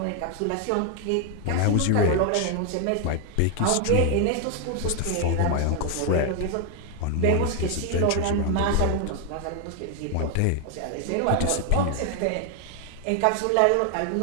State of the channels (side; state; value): both; different; correlation 0.00